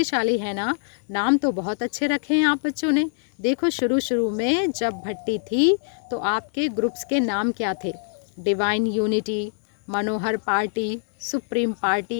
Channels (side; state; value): right; silent; digital silence